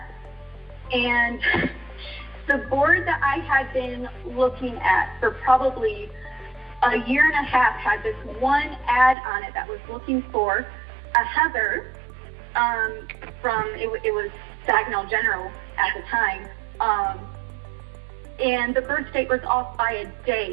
and the board that I had been looking at for probably a year and a half had this one ad on it that was looking for a Heather from, it was Saginaw General at the time, and the birth date was off by a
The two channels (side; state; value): left; drops out; at 9.2 s